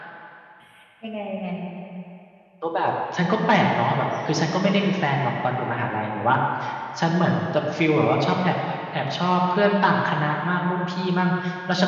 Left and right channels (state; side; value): identical; both; correlation 1.00